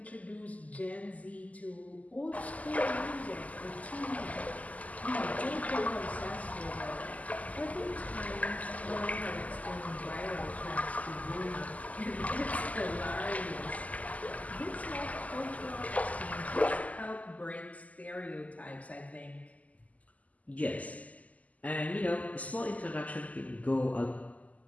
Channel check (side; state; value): right; late; 0.074 ms